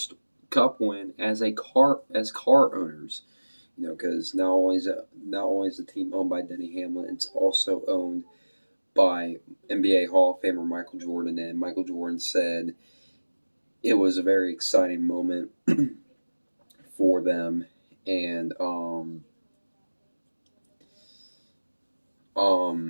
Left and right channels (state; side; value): inverted; both; correlation -1.00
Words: Cup win as car owners. Because not only is the team owned by Denny Hamlin, it's also owned by NBA Hall of Famer Michael Jordan. And Michael Jordan said it was a very exciting moment for them, and